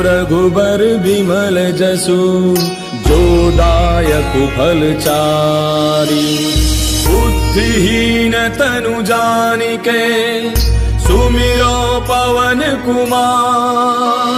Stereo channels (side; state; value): both; identical; correlation 1.00